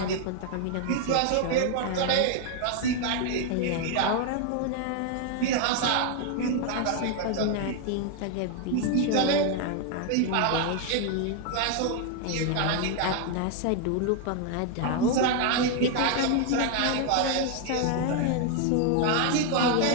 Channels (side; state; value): both; different; correlation 0.00